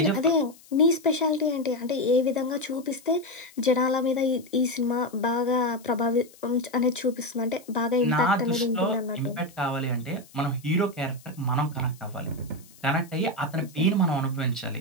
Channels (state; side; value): noise; left; hiss, 24 dB below the sound